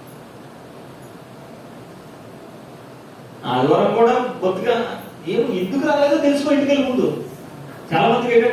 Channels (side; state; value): both; identical; correlation 1.00